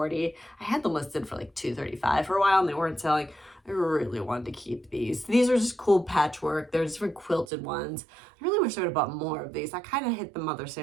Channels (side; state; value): left; drops out; at 7.5 s